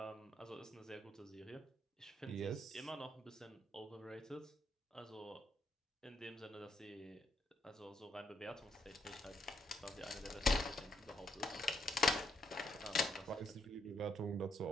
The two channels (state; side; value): normal; both; correlation 0.75